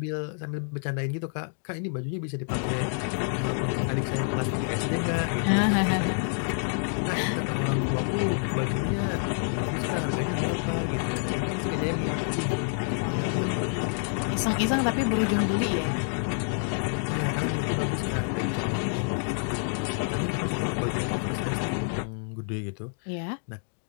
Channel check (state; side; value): silent; right; digital silence